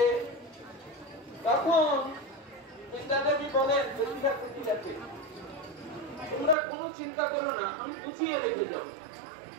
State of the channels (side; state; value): left; drops out; at 6.6 s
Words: তখন বৃন্দা দেবী বলেন জটিলা কুটিলাকে, তোমরা কোনো চিন্তা করো না, আমি গুছিয়ে রেখে যাবো।